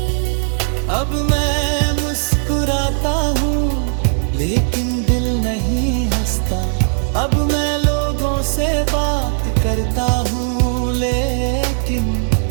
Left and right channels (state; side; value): silent; left; digital silence